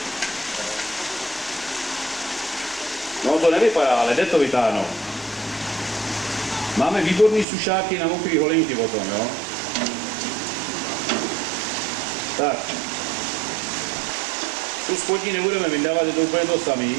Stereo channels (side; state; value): left; drops out; at 7.5 s